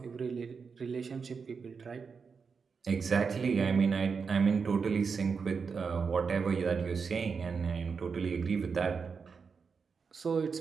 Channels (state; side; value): quieter; left; 5.5 dB